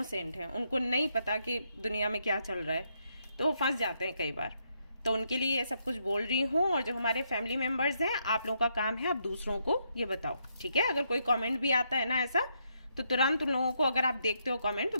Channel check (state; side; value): inverted; both; correlation -0.77